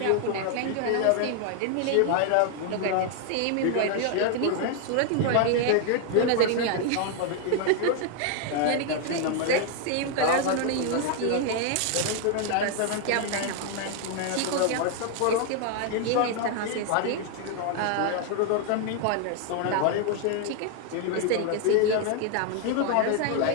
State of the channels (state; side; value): different; both; correlation 0.00